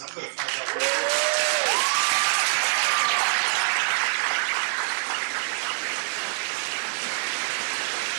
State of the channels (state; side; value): silent; left; digital silence